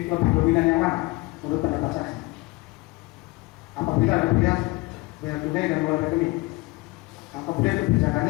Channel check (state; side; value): quieter; right; 23.0 dB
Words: dominan yang mana menurut pendapat saksi? Apabila ada pilihan bayar tunai dan mulai rekening, kemudian